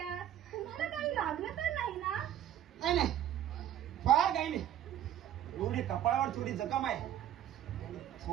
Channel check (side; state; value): left; quieter; 11.1 dB